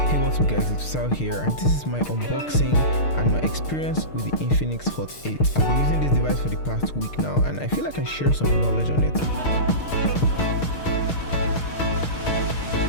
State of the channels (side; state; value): right; late; 6.5 ms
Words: Hey, what's up guys, it's Sal here, and this is my unboxing and my experience with the Infinix Hot 8. I've been using this device for the past week now, and I feel like I can share some knowledge on it.